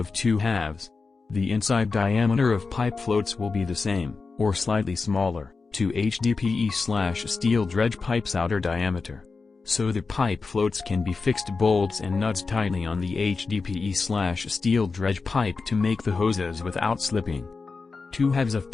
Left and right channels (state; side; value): quieter; right; 4.4 dB